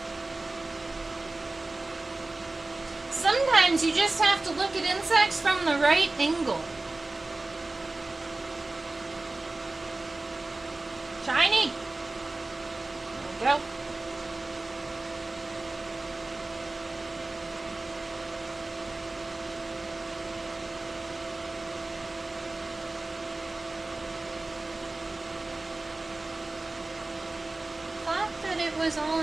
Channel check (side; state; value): left; quieter; 3.1 dB